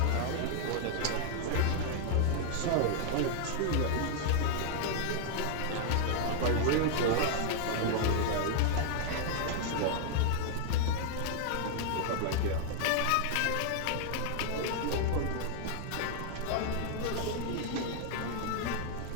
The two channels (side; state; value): both; different; correlation 0.00